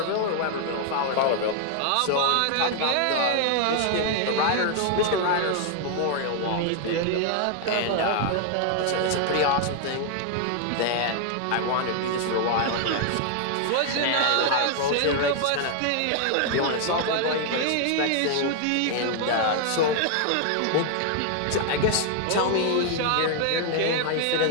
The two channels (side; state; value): both; different; correlation 0.00